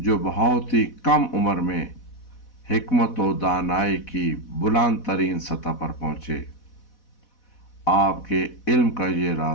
بہت ہی کم عمر میں حکمت و دانائی کی بلند ترین سطح پر پہنچے۔ آپ کے علم کا یہ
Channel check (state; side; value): late; right; 4.1 ms